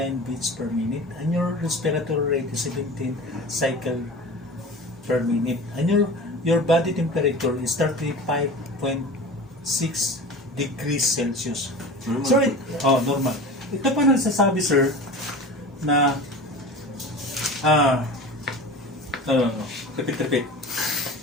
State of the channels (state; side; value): normal; both; correlation 0.35